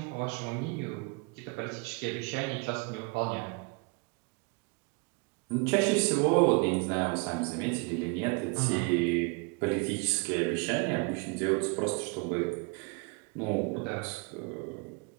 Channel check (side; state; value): left; quieter; 31.6 dB